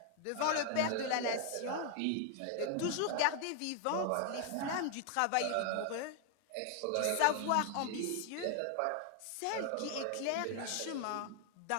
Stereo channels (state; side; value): different; both; correlation 0.00